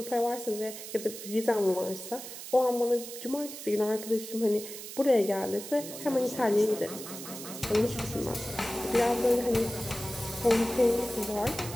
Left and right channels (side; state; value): right; noise; hiss, 11 dB below the sound